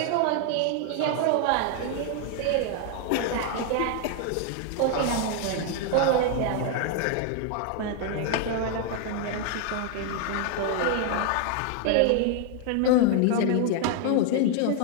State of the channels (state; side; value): different; both; correlation 0.00